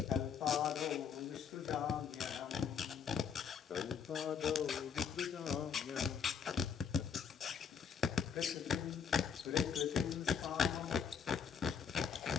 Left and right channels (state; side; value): quieter; right; 6.9 dB